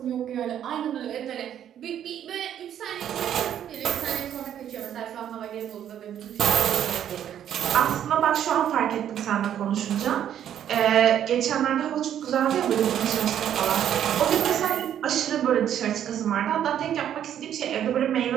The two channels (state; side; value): quieter; left; 10.1 dB